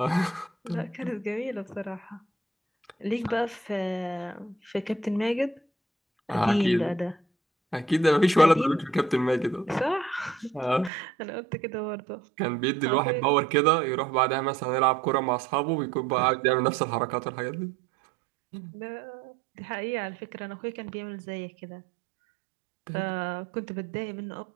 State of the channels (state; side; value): drops out; left; at 10.9 s